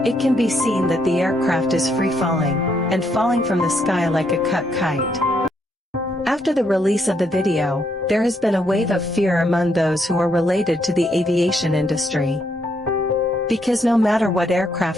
it can be seen that the aircraft is free-falling, and falling from the sky like a cut kite. After the release of the video, there has been a wave of fear among those who are related to the aviation industry. Because no matter what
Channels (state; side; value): normal; both; correlation 0.75